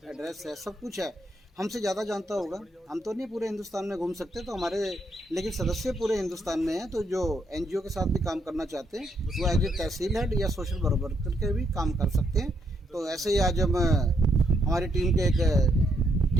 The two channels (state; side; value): normal; both; correlation 0.76